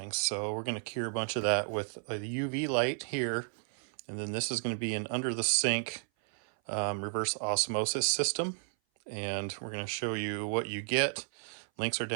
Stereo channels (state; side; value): silent; left; 56 dB below the other